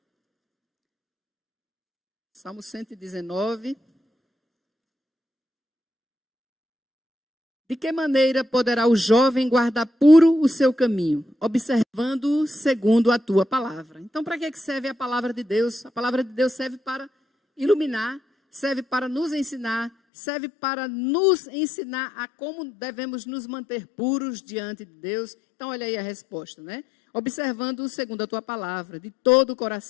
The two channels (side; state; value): right; drops out; at 19.9 s